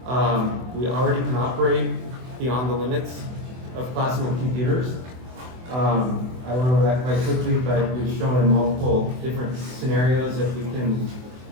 We already can operate beyond the limits of classical computers. I went over that quite quickly, but we've shown in multiple different scenarios that we can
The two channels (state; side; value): late; left; 24 ms